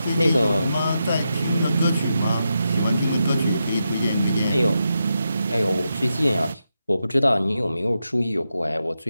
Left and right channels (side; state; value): both; inverted; correlation -0.87